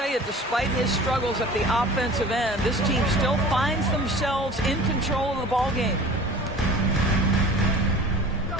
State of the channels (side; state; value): both; normal; correlation 0.43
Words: you, despite his struggles at the offensive end, this team still finds themselves in control of the ball game.